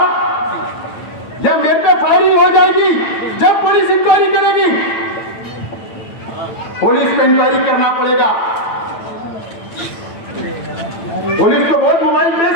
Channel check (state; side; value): late; right; 9.0 ms